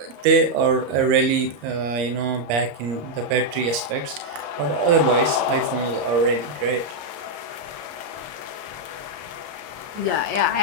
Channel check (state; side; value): late; left; 34 ms